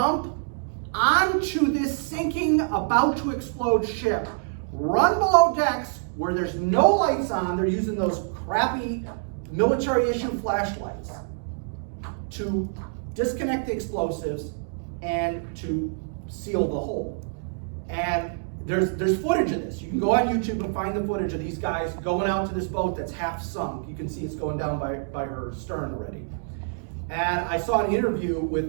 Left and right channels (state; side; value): silent; left; digital silence